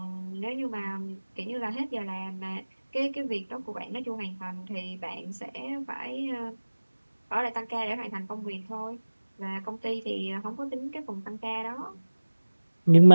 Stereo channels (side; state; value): both; inverted; correlation -1.00